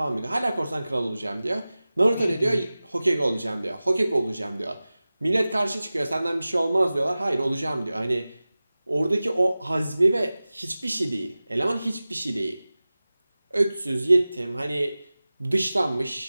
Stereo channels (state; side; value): inverted; both; correlation -0.97